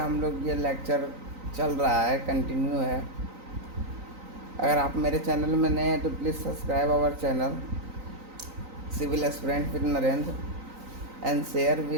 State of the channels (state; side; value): late; left; 3.9 ms